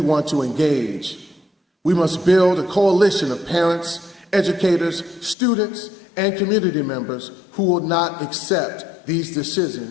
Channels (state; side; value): drops out; right; at 5.4 s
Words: want to engage. We must build a coalition of parents, educators, students, and community members who will not accept these